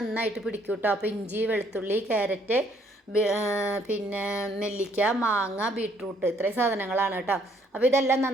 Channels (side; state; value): both; normal; correlation 0.65